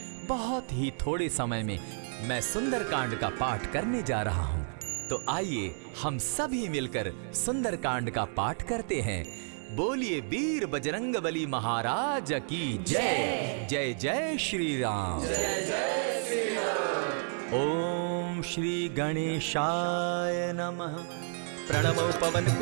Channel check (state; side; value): silent; left; 57 dB below the other